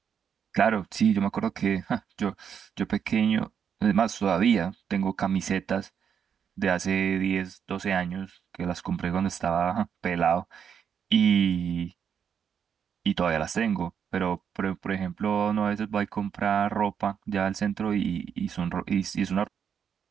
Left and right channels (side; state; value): left; quieter; 7.7 dB